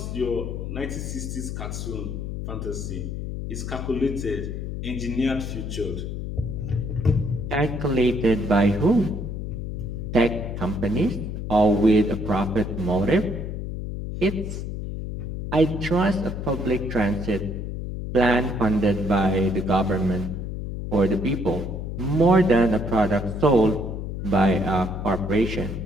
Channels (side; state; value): left; noise; hum, 5 dB below the sound